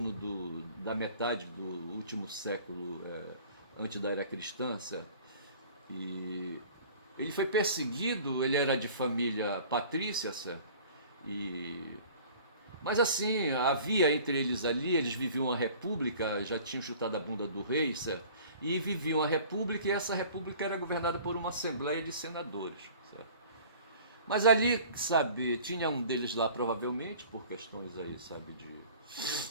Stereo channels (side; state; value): both; inverted; correlation -0.47